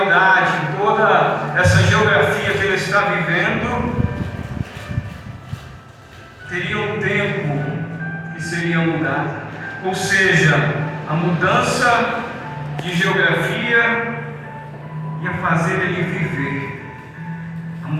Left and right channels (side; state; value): both; identical; correlation 1.00